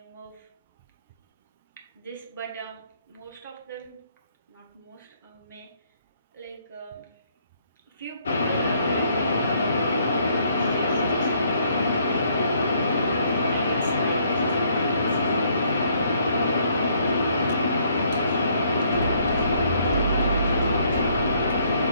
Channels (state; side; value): inverted; both; correlation -0.67